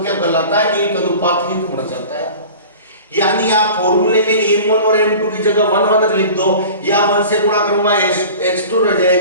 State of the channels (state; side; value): inverted; both; correlation -0.39